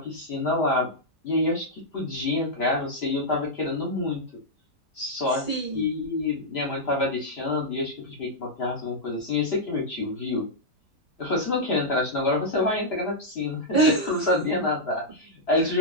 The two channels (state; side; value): normal; both; correlation -0.06